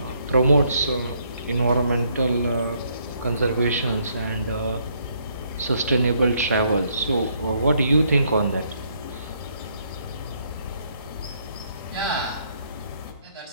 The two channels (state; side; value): inverted; both; correlation -0.70